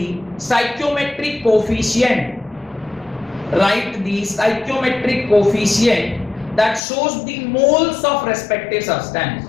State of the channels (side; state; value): right; drops out; at 6.8 s